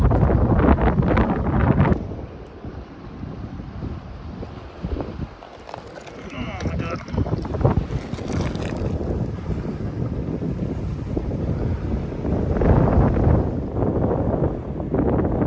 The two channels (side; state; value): both; identical; correlation 1.00